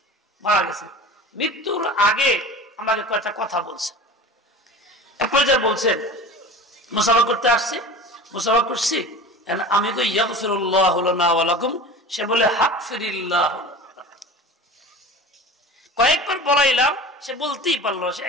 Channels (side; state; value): both; normal; correlation 0.36